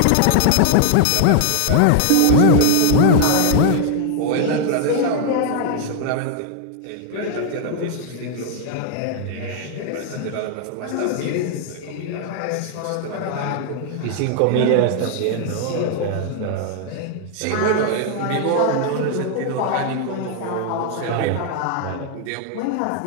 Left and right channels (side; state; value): both; different; correlation 0.00